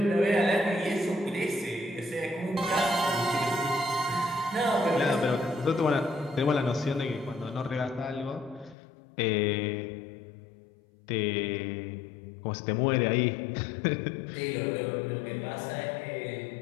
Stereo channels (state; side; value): drops out; right; at 8.8 s